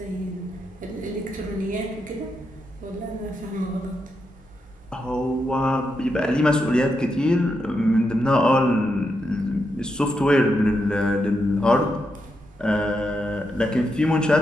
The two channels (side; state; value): both; normal; correlation 0.84